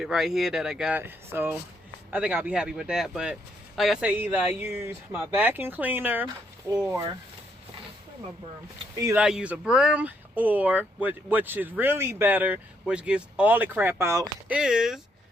right here that I got. So I think I'll be happy with that. But like I say, either I use my vacuum cleaner or my broom. Either I use a broom or which is really better, which gets all the crap out, is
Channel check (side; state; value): both; normal; correlation 0.74